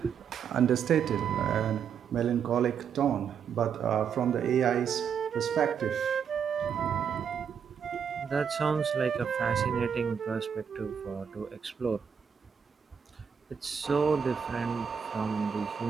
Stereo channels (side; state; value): left; quieter; 7.3 dB